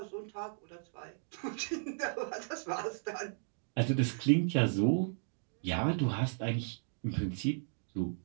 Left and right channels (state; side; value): silent; left; digital silence